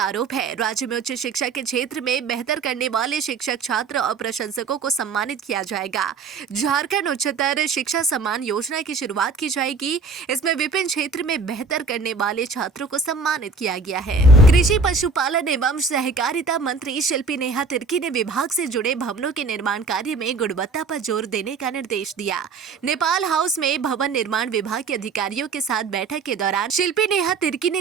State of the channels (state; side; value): quieter; left; 4.4 dB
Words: आरोप है। राज्य में उच्च शिक्षा के क्षेत्र में बेहतर करने वाले शिक्षक, छात्र और प्रशंसकों को सम्मानित किया जाएगा। झारखंड उच्चतर शिक्षा सम्मान योजना की शुरुआत की जाएगी। इसमें विभिन्न क्षेत्र में बेहतर करने वाले छात्रों को सम्मानित किया गया है। कृषि, पशुपालन एवं सहकारिता मंत्री शिल्पी नेहा तिर्की ने विभाग से जुड़े भवनों के निर्माण कार्य में गुणवत्ता पर जोर देने का निर्देश दिया। नेपाल हाउस में भवन निर्माण विभाग के अधिकारियों के साथ बैठक के दौरान शिल्पी नेहा तिर्की ने